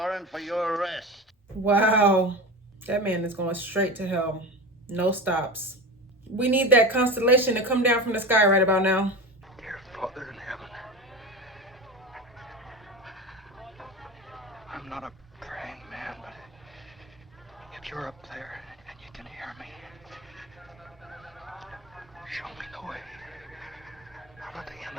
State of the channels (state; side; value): normal; both; correlation 0.26